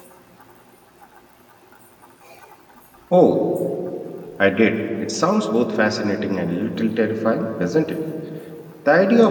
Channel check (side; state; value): both; identical; correlation 1.00